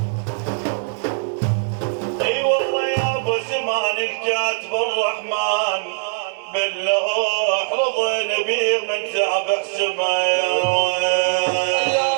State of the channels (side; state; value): left; silent; digital silence